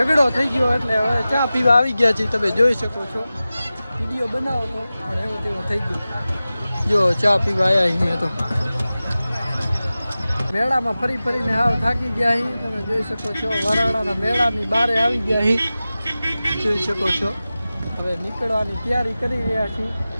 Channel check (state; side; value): inverted; both; correlation -0.96